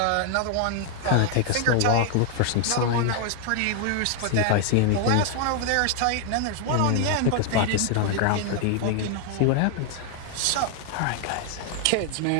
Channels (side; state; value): both; different; correlation 0.00